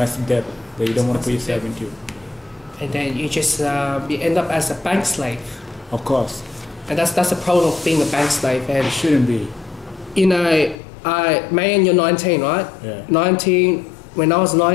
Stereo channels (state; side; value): drops out; right; at 10.8 s